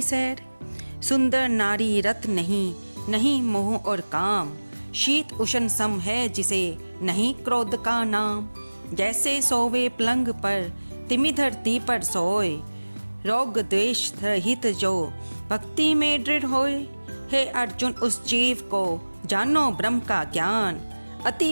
सैर। सुंदर नारी रत नहीं, नहीं मोह और काम, शीत उष्ण सम है जिसे नहीं क्रोध का नाम। जैसे सोवे पलंग पर तिमि धरती पर सोए, रोग द्वेष रहित जो भक्ति में दृढ़ होए। हे अर्जुन, उस जीव को जानो ब्रह्म का ज्ञान, अति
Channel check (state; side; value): inverted; both; correlation -1.00